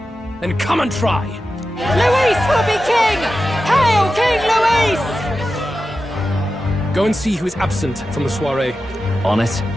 then come and try. Luis will be king! Hail King Luis! Go and see who is absent from the soiree. On it.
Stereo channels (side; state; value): both; normal; correlation 0.92